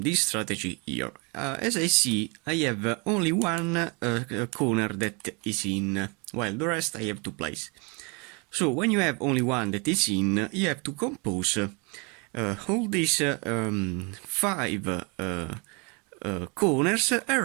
strategy here. As I see, I have only one corner that is in, while the rest I have to place. So when you have only one that is in, you have to compose all these five corners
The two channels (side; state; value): left; quieter; 31.7 dB